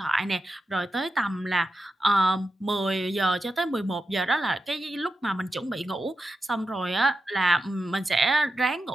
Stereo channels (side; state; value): both; normal; correlation 0.89